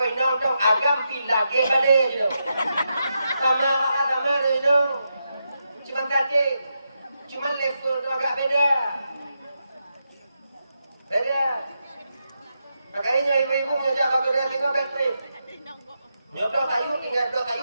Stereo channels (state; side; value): inverted; both; correlation -0.85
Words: inang tong agam pilage balik je. Sama je. Cuma tadi, cuma level tu agak beda. Makanya ibu-ibu menyojak bak kedai tengok baterai. Nyodok kayu, tinggal dok kayu